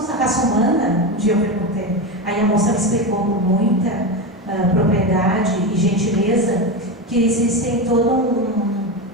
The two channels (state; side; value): normal; both; correlation 0.17